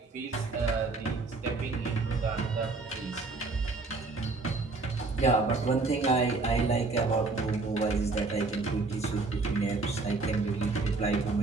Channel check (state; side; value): quieter; left; 3.7 dB